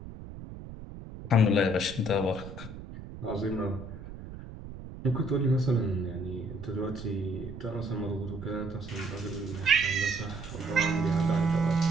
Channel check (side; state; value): right; noise; rumble, 12 dB below the sound